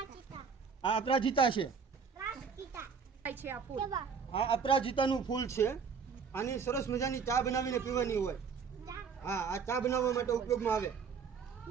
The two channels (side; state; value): left; quieter; 6.0 dB